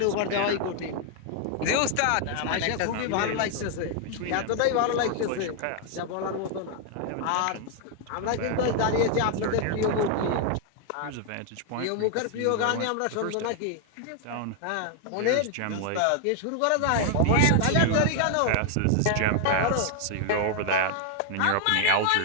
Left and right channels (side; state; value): both; different; correlation 0.00